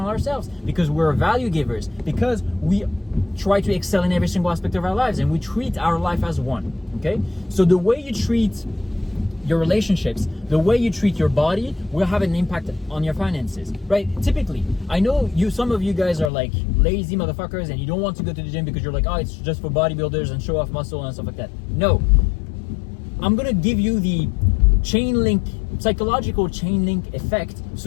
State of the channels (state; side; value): drops out; right; at 16.3 s